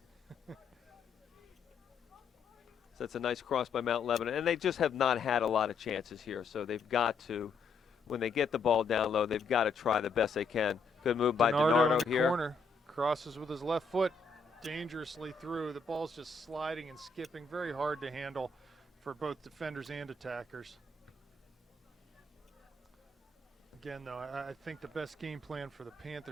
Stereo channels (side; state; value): right; quieter; 4.3 dB